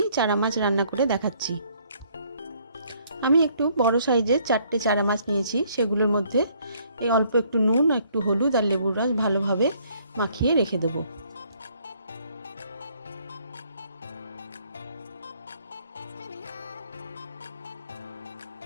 चारा माछ रान्ना करे देखाच्छि। आमी एकटु बड़ो साइजेर 4टे चारा माछ नियेछि, सेगुलोर मध्य अल्प एकटु नुन, एकटु हलुद और लेबुर रस भालोभाबे माखिए रेखे देब।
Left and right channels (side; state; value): both; inverted; correlation -0.64